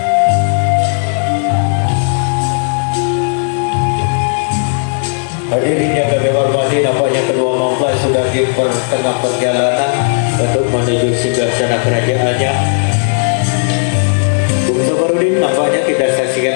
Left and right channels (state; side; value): silent; right; digital silence